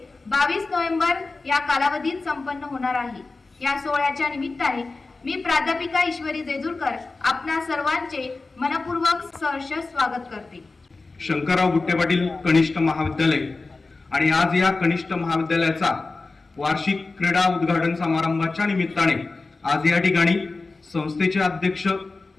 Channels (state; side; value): quieter; right; 3.6 dB